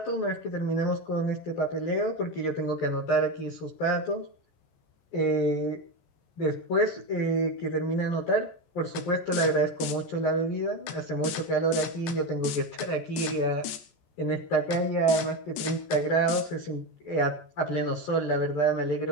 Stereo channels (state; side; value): late; right; 14 ms